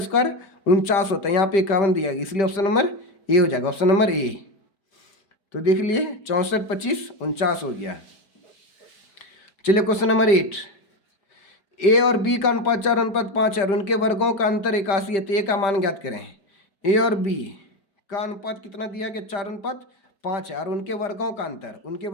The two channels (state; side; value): late; right; 5.1 ms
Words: स्क्वायर 49 होता है। यहाँ पे 51 दिया गया, इसलिए ऑप्शन नंबर ए हो जाएगा। ऑप्शन नंबर ए, तो देख लिए 64 25 49 हो गया। चलिए क्वेश्चन नंबर 8, ए और बी का अनुपात 4:5 है और उनके वर्गों का अंतर 81 है, तो ए का मान ज्ञात करें। ए और बी का अनुपात कितना दिया गया, 4:5 है और उनके वर्गों का अंतर, उनके